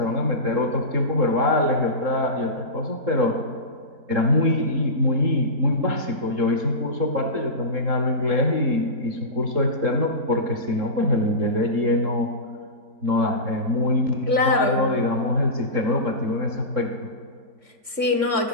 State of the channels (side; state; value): left; late; 3.5 ms